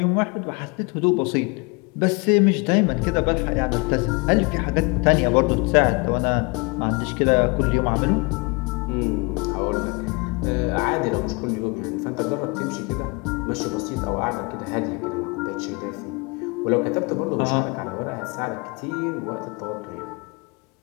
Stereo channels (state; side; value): quieter; right; 29.9 dB